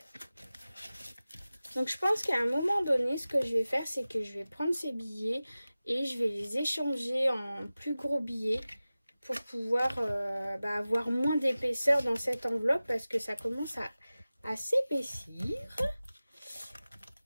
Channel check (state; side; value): inverted; both; correlation -0.97